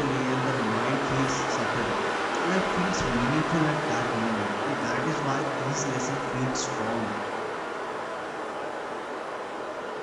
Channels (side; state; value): both; identical; correlation 1.00